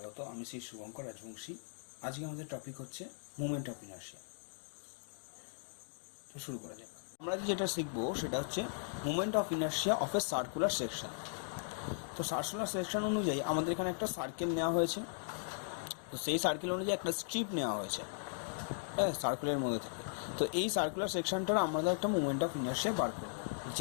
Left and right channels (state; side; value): silent; right; digital silence